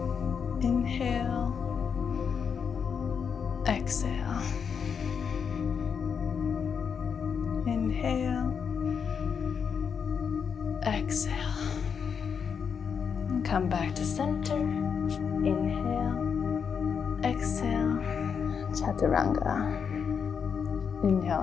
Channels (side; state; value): right; quieter; 6.7 dB